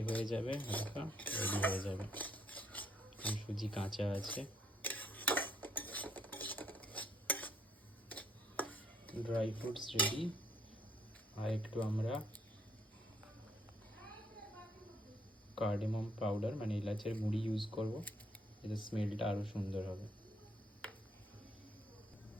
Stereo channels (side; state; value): both; normal; correlation 0.69